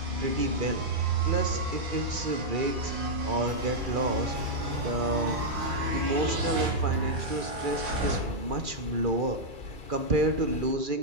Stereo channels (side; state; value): left; late; 2.4 ms